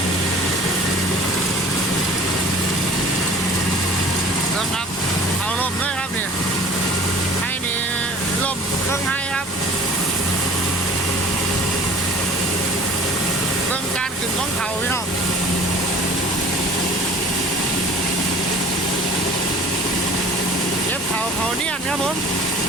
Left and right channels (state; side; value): normal; both; correlation 0.46